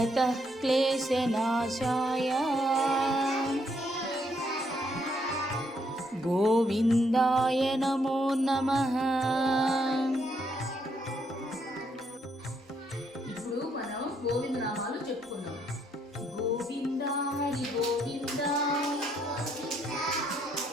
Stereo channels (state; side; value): normal; both; correlation 0.73